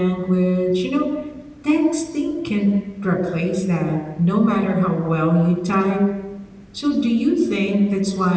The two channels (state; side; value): identical; both; correlation 1.00